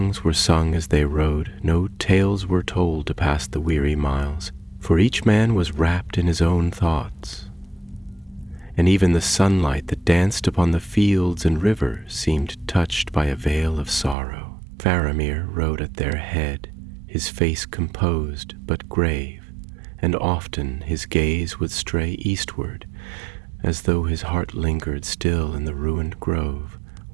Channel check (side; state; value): left; drops out; at 14.2 s